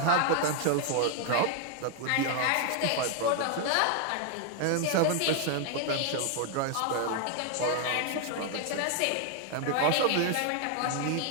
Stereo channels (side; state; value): both; different; correlation 0.00